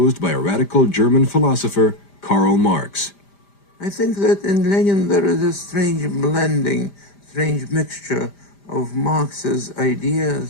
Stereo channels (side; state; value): right; late; 5.0 ms